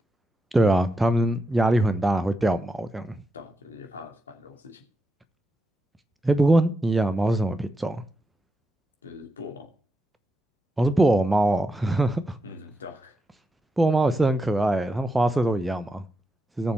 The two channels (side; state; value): both; normal; correlation 0.87